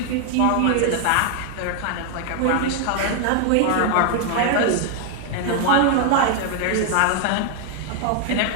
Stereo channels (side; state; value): both; different; correlation 0.00